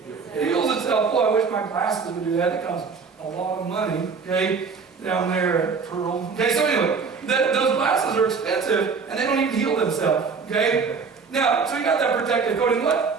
It heals itself. Boy, I wish my glasses would do that. It costs a lot of money, okay, down there at Pearl. Okay, so anyway, those glasses are expensive, and they don't even heal themselves, okay? Now, so you got that protective coating.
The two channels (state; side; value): quieter; left; 5.2 dB